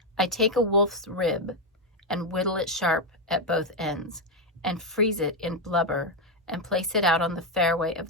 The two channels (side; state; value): both; normal; correlation 0.05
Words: I take a wolf's rib and whittle it sharp at both ends and freeze it in blubber and place it out on the fairway